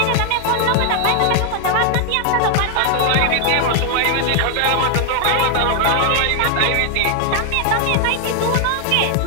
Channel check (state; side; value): different; both; correlation 0.00